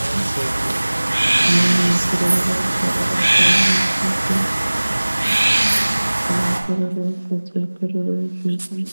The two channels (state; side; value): inverted; both; correlation -1.00